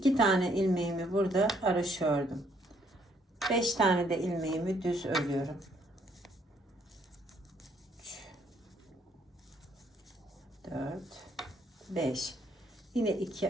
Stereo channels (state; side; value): normal; both; correlation 0.68